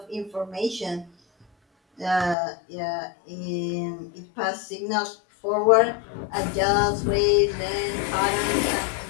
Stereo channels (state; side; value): drops out; right; at 2.4 s